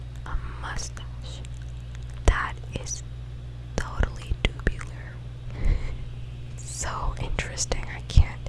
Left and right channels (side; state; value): both; identical; correlation 1.00